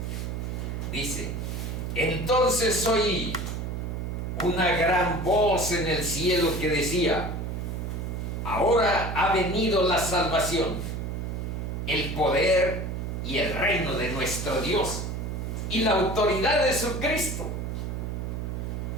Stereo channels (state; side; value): noise; right; hum, 4 dB below the sound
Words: Dice, entonces oí una gran voz en el cielo que decía, ahora ha venido la salvación, el poder y el reino de nuestro Dios y la autoridad de su Cristo.